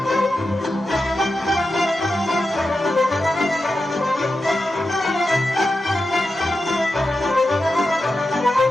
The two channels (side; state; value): both; normal; correlation 0.90